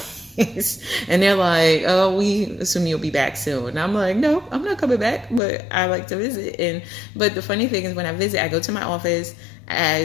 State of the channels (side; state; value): right; drops out; at 5.4 s